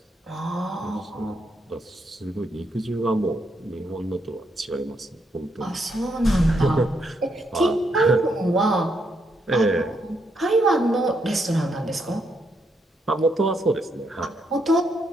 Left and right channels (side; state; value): both; normal; correlation 0.77